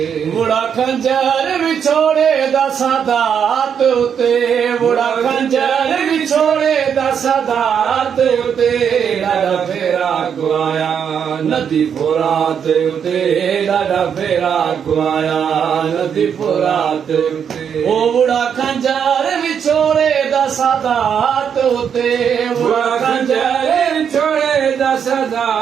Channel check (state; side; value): quieter; left; 7.7 dB